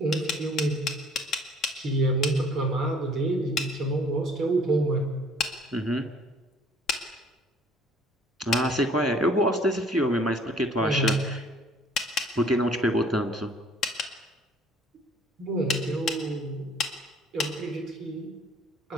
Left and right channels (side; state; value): both; normal; correlation 0.56